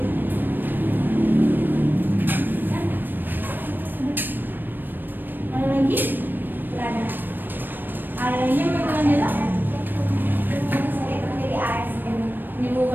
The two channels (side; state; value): left; late; 0.093 ms